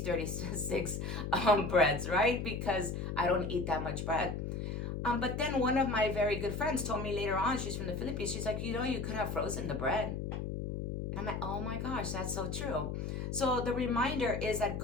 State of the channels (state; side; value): noise; left; hum, 3 dB below the sound